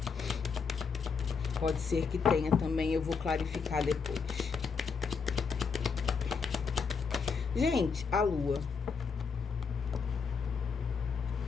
Pode ser que tenha também, eu vou clarificar depois. Gente, a lua.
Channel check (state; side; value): quieter; right; 5.5 dB